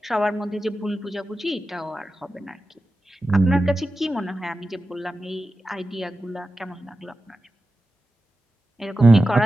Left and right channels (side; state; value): both; normal; correlation 0.92